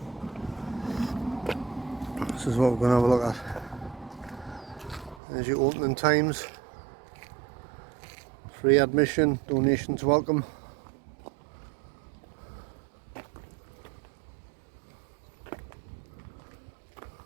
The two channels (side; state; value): left; drops out; at 5.2 s